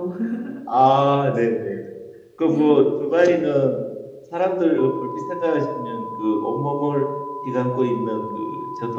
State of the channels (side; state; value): both; identical; correlation 1.00